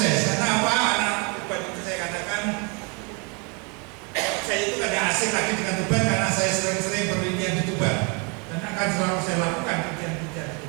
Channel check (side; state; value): left; quieter; 32.1 dB